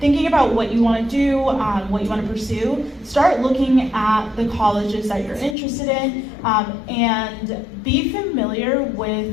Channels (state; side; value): drops out; right; at 5.6 s